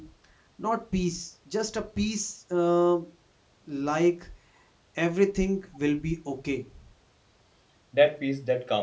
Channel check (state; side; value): identical; both; correlation 1.00